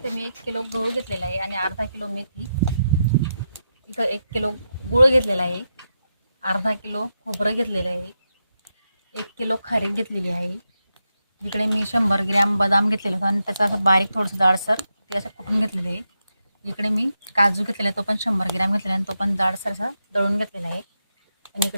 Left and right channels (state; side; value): inverted; both; correlation -0.86